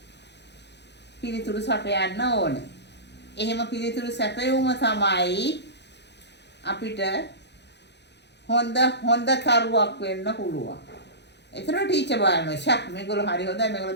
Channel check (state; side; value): late; right; 0.50 ms